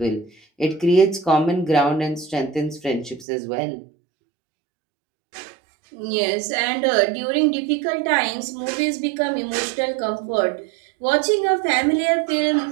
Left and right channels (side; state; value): left; drops out; at 3.2 s